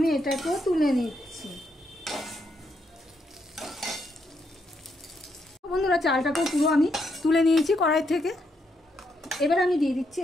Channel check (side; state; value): both; normal; correlation 0.78